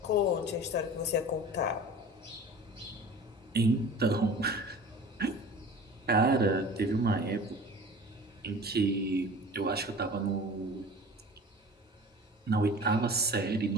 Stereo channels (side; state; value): both; normal; correlation 0.40